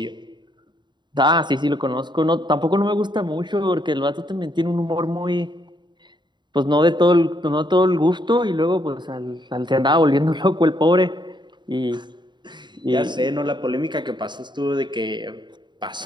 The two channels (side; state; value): left; late; 0.22 ms